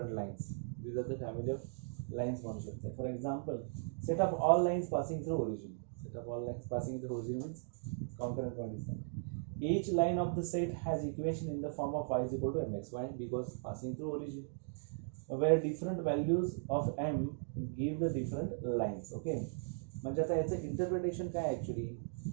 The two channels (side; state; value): left; silent; digital silence